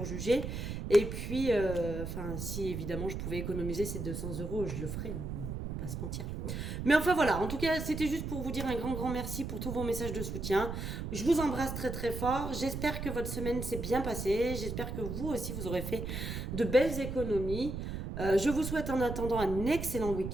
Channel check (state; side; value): noise; right; rumble, 5 dB below the sound